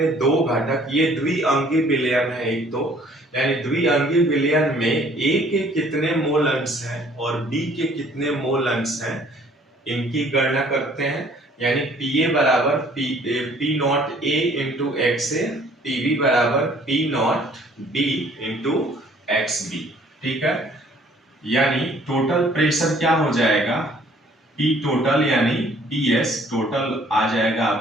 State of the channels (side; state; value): both; normal; correlation 0.58